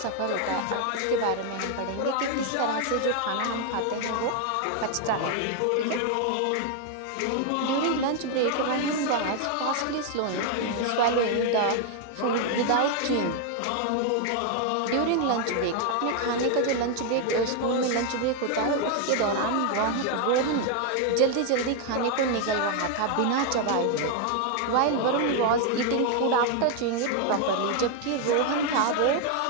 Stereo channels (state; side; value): different; both; correlation 0.00